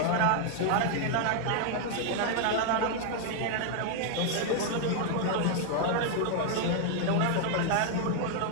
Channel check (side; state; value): both; different; correlation 0.00